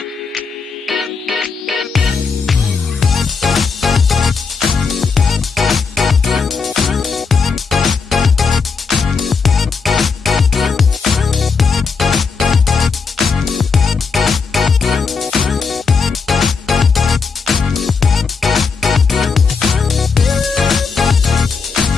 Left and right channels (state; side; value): quieter; right; 5.1 dB